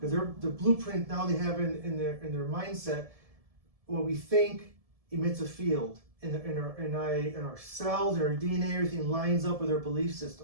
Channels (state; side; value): late; left; 1.7 ms